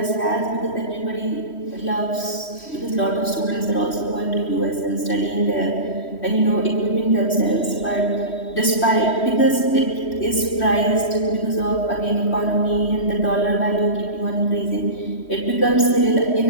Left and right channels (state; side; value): late; right; 3.1 ms